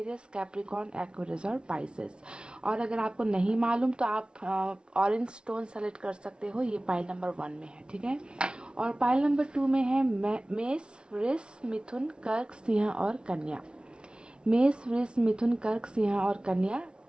Capricorn, Aquarius और पाइसेस। और अगर आपको नहीं मालूम तो आप ऑरेंज स्टोन सेलेक्ट कर सकते हो। ये पाइल नंबर 1 में है, ठीक है? और पाइल नंबर 2 में है मेष, वृष, मिथुन, कर्क, सिंह और कन्या। मेष, वृष, मिथुन, कर्क, सिंह और कन्या।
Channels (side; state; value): left; late; 0.056 ms